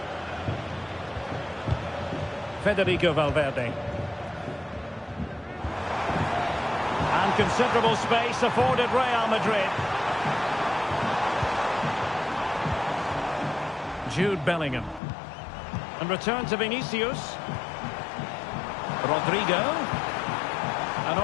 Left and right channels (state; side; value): drops out; right; at 15.0 s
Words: Federico Valverde. And considerable space afforded Real Madrid. Jude Bellingham. And return to Vinicius. Rodrigo. And